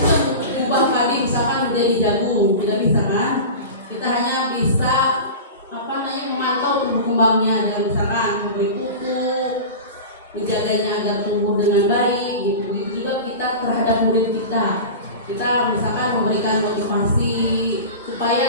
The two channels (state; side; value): inverted; both; correlation -0.31